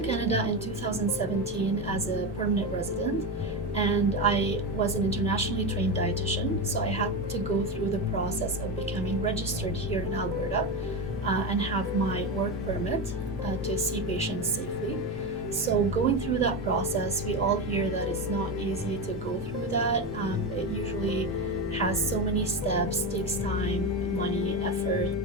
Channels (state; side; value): normal; both; correlation 0.17